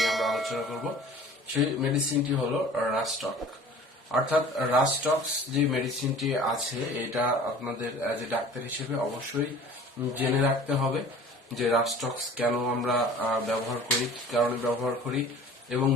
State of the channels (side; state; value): both; normal; correlation 0.45